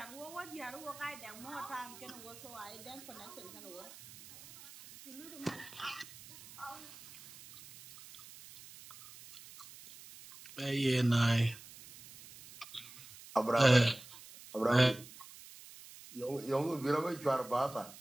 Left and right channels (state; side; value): noise; right; hiss, 17 dB below the sound